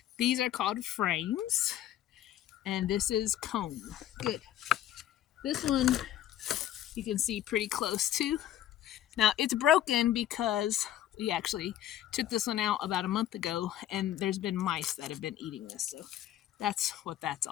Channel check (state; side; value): quieter; right; 11.9 dB